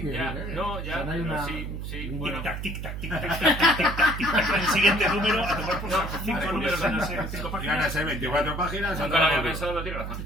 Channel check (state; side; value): noise; right; hum, 6 dB below the sound